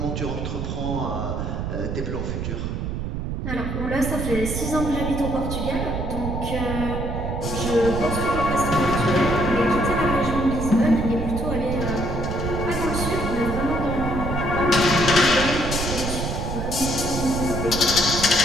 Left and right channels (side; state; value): right; noise; rumble, 3 dB below the sound